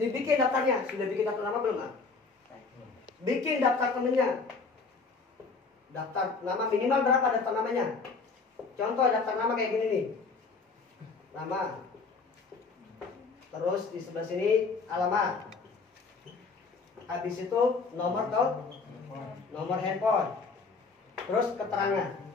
daftarnya. Sudah bikin daftar nama belum? Bikin daftar temennya. Daftar nama minimal berapa daftar namanya? Contoh daftar nama kayak gini nih. Nama. Terus di sebelah sini alamat. Habis itu nomor handphone. Terus keterangan.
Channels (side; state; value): right; quieter; 4.5 dB